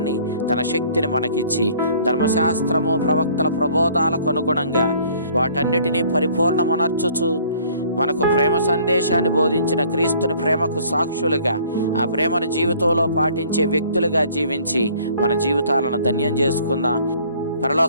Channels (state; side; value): inverted; both; correlation -0.56